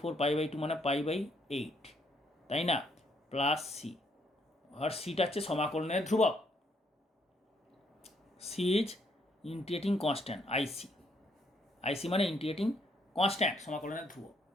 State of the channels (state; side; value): normal; both; correlation 0.71